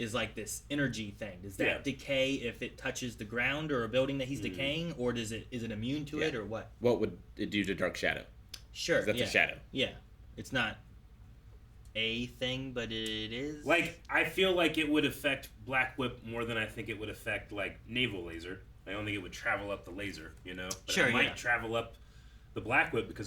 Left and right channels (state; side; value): identical; both; correlation 1.00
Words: like this energy thing. Does that Yeah. decay if it touches the ground or a building that he's decaying, or is it immune to it, Yeah. or what? What would it do to Dark Shadow? Sure, 'Cause that's yeah. a shadow. Yeah, it's not a thing, but it is. Like, I feel like it would affect Black Whip more than I think it would affect, like, Naval Laser. I don't think it would travel up the laser, you know? But Sure, it might yeah. travel up the Black Whip because